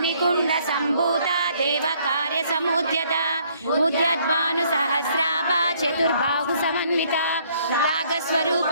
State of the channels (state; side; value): inverted; both; correlation -0.64